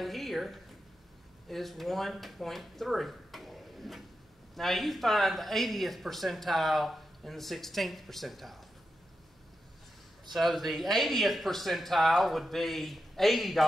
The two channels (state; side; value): normal; both; correlation 0.89